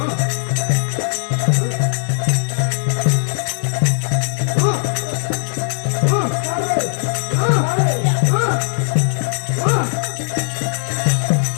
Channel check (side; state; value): right; silent; digital silence